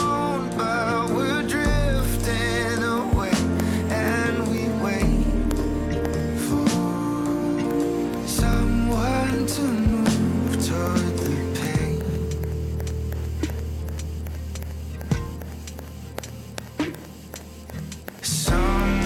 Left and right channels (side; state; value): both; identical; correlation 1.00